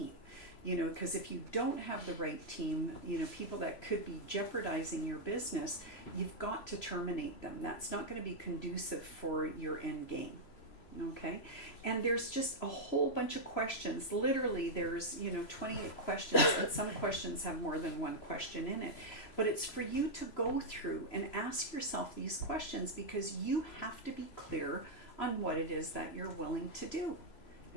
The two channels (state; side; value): late; right; 3.0 ms